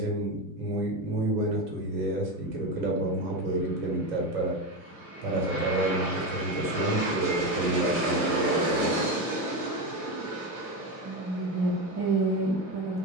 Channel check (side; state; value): left; late; 2.5 ms